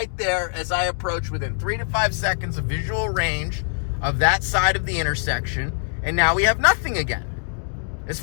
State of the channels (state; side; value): silent; right; digital silence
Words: there as I approach within 3 to 5 seconds of visual range of that side of the intersection. And now we have nothing again. As